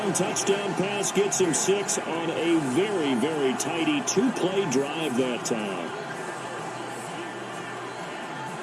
touchdown pass gets him 6 on a very, very tidy 2-play drive that time.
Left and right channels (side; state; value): both; identical; correlation 1.00